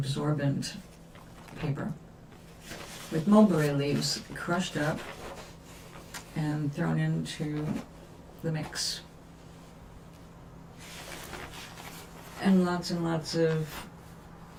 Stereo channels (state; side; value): identical; both; correlation 1.00